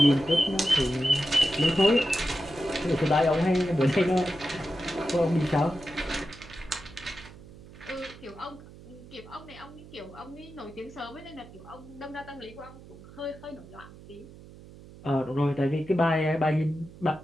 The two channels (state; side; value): noise; right; hum, 19 dB below the sound